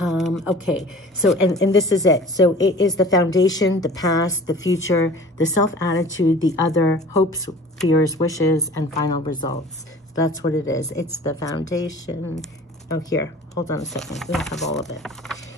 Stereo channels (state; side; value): normal; both; correlation 0.44